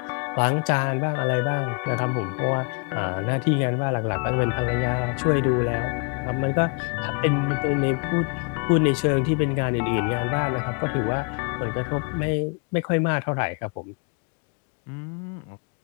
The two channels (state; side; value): quieter; right; 36.9 dB